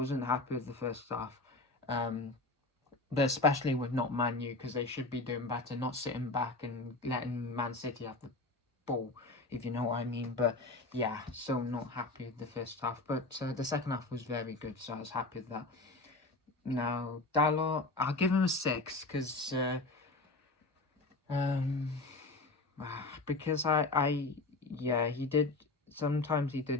happy with the first half. But especially with not Man U, because they should be doing better, not sitting back and letting Man City have the ball, if you know what I mean. But yeah, so not happy with the first half. But the second half was very good, so I was happy with that. Now, Dalot, I'll give him a 6 because he did. Sometimes he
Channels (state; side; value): quieter; right; 3.2 dB